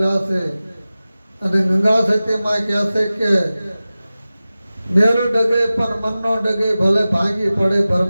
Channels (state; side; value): inverted; both; correlation -0.97